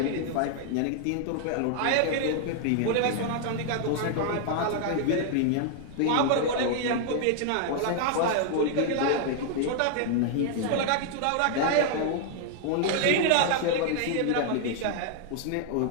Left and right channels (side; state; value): both; different; correlation 0.00